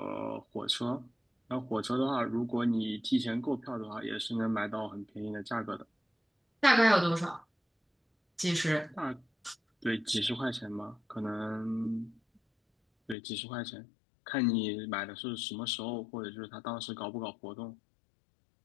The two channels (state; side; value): drops out; right; at 13.2 s